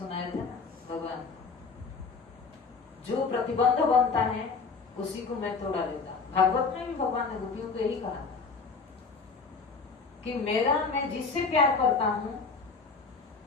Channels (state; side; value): quieter; right; 4.7 dB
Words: थे ना, भगवान जो प्रतिबंध बनता है उसी को मैं तोड़ा देता। भागवत में भी भगवान ने गोपियों को यही कहा था कि मैं जिससे प्यार करता हूं,